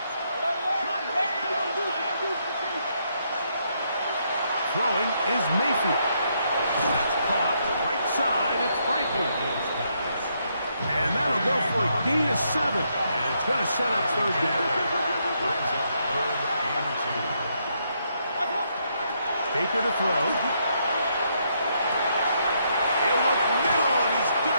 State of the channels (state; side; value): inverted; both; correlation -0.76